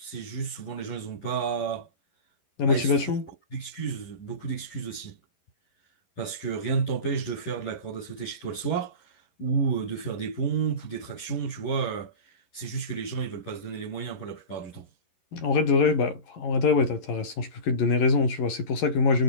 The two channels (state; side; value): late; right; 11 ms